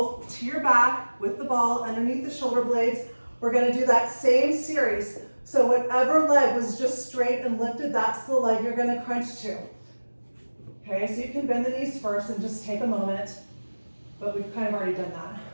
to your back with the ball underneath the shoulder blades. We're gonna do that same series. So whatever leg was just straight and lifted, that's the leg you're gonna crunch to. Okay, so you can bend the knees first and just take a moment, but we've kind of already done that,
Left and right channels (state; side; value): inverted; both; correlation -1.00